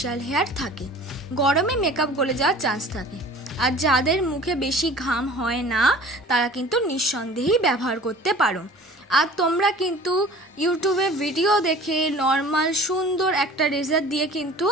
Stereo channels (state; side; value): normal; both; correlation 0.45